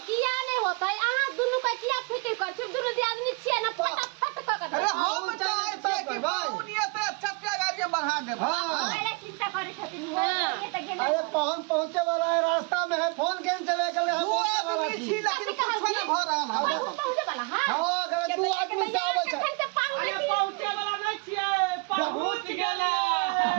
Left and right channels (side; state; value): left; quieter; 31.4 dB